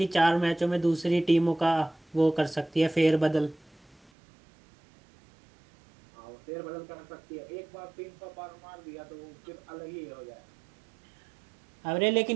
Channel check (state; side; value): drops out; left; at 4.1 s